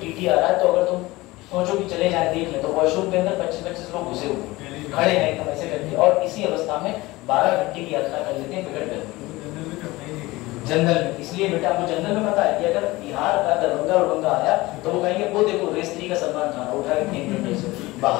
आ रहा है, तो अगर तुम सोचो कि चले जाए देख ले, तो वॉशरूम के अंदर 25-25 लोग घुसे हुए खड़े हैं एकदम ऐसे करके, और इसी अवस्था में 12 घंटे की यात्रा कर लेते हैं बिगड़ कर जनरल में। इसलिए बेटा आपको जनरल में पता है कि अगर बिहार का दरभंगा उड़ंगा आया तो वो कहेंगे वो देखो रेस 3 का सलमान खान उठा के फेंक देंगे से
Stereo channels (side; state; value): right; quieter; 20.3 dB